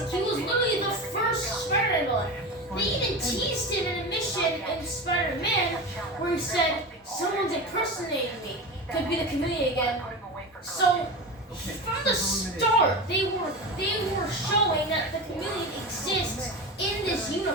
He was literally the first Spider-Man villain. They even teased it in a mission in Spider-Man where he said, someone's impersonating me. Could be the Chameleon again. So from the start, they were showing that the Chameleon exists in this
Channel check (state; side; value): normal; both; correlation 0.25